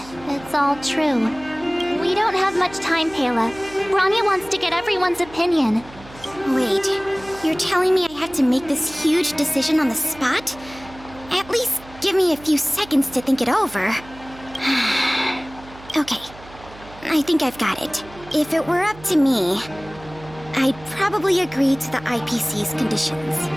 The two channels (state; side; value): noise; right; hum, 20 dB below the sound